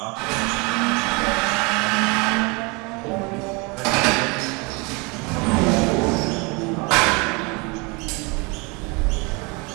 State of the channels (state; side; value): quieter; left; 28.8 dB